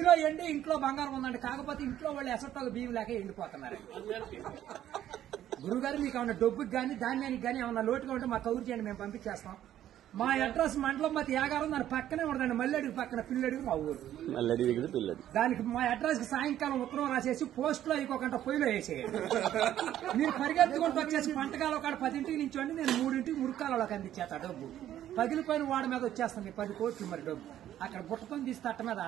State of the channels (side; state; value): left; quieter; 11.8 dB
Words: ఎండి ఇంట్లో బంగారం ఉందండి, కాకపోతే ఇంట్లో వాళ్ళు ఎసట్టాలు బియ్యం లేక ఎండిపోతున్నారు. గురుగారు మీకు ఏమన్నా డబ్బుకి కానీ ధాన్యానికి కానీ ఏమన్నా లోటుగా ఉంటే మాకు కౌరు చేయండి, మేము పంపించేస్తాం. మా అడ్రస్ మండలం మతి యాగారం, దాని పక్కనే ఉండదండి, మల్లెడుగు పక్కన పిల్లడుగు మా ఊరు. దానికి మా అడ్రస్ కి సాయంకాలం ఉత్తరం రాసేసి పోస్ట్ లో ఇంకొకంట పొయ్యిలో వేసేయండి. మీరు పరిగెత్తుకుంటూ వచ్చేసి పంటకాలం ఒక 10 నుంచి నేను 3 మురికాలలోకి అందించేస్తా. డబ్బు పగిలిపోయిన వాడి మీద వచ్చేస్తాను 10 కోట్లు. మరి డబ్బు అక్కడ బుట్టకొని తీసి తట్ట మీద